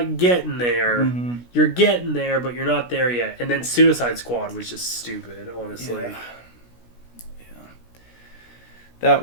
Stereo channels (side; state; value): right; late; 17 ms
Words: getting there. You're getting there, but you're not there yet. And then Suicide Squad was just stupid, honestly. Yeah. That